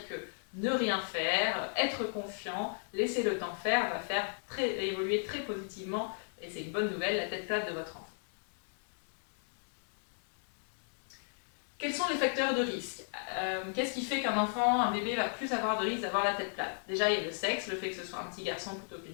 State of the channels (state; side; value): silent; right; digital silence